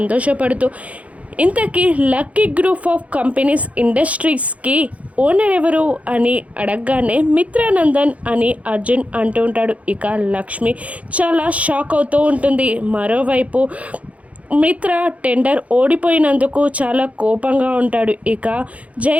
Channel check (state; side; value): late; left; 0.066 ms